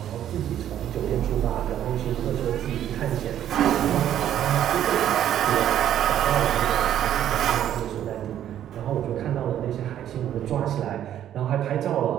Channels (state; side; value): quieter; left; 10.9 dB